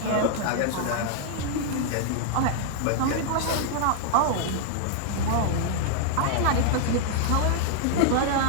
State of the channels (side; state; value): both; different; correlation -0.01